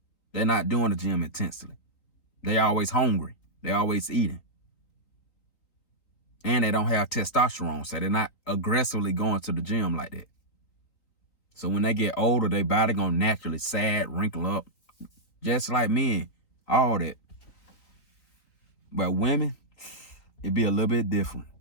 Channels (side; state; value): right; late; 4.0 ms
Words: they're not doing the gym intensely. They always hungry. They always eating. And they don't have testosterone, so they're not aggressively going to the gym like that. So when they get older, their body gonna naturally sag, wrinkle up, just like men, all that. But women, it'd be a little bit different.